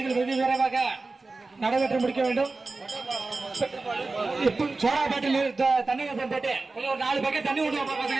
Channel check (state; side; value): quieter; left; 3.6 dB